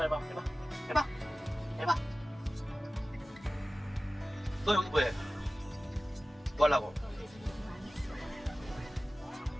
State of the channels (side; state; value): both; normal; correlation 0.97